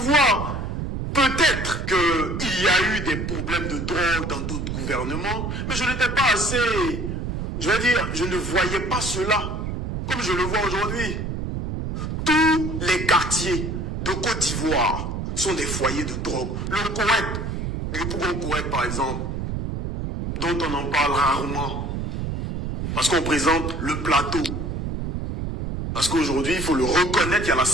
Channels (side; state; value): right; noise; rumble, 4 dB below the sound